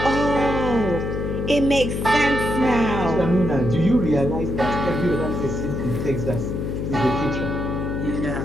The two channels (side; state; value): left; noise; hum, 3 dB below the sound